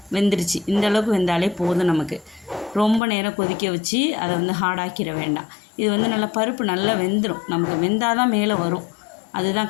வெந்துருச்சு. இந்த அளவுக்கு வெந்தாலே போதும் நமக்கு. ரொம்ப நேரம் கொதிக்க வச்சு அதை வந்து ஹார்டாக்கிட வேண்டாம். இது வந்து நல்லா பருப்பு நல்லா வெந்துடும். நமக்கு வெந்தால் தான் மேலே வரும்,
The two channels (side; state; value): right; drops out; at 3.0 s